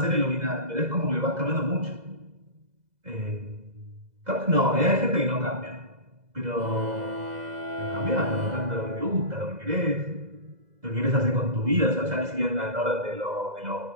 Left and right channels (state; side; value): late; left; 2.0 ms